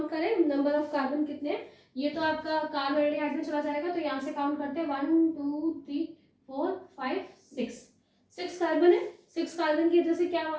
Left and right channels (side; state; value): both; identical; correlation 1.00